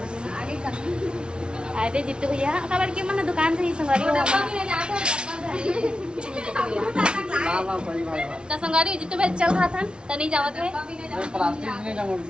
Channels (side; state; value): left; late; 0.056 ms